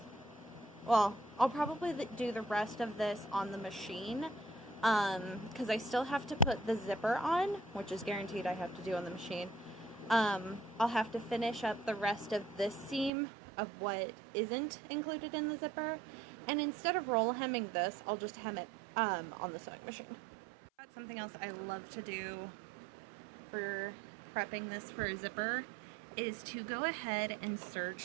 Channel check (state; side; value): drops out; left; at 13.1 s